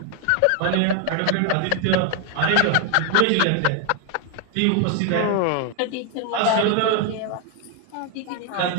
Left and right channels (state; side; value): different; both; correlation 0.01